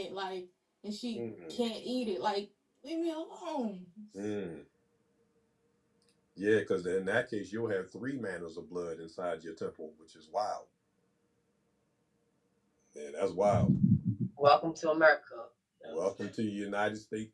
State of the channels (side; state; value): both; identical; correlation 1.00